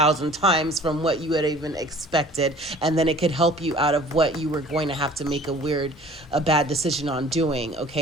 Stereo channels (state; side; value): normal; both; correlation 0.49